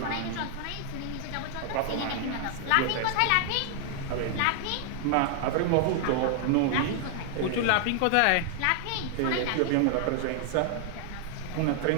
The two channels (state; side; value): different; both; correlation 0.00